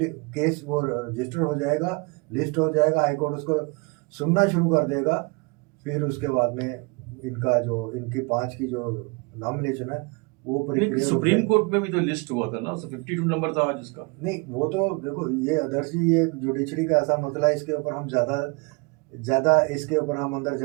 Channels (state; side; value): quieter; left; 29.6 dB